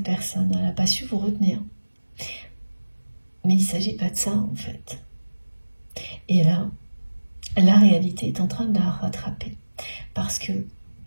personne, elle n'a pas su vous retenir. Mais il ne s'agit pas de ça en fait. Et là, la réalité est en train de la rattraper. Parce que,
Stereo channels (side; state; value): both; inverted; correlation -1.00